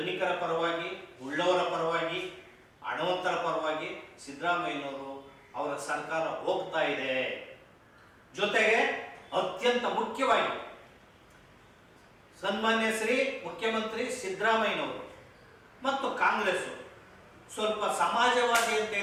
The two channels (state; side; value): identical; both; correlation 1.00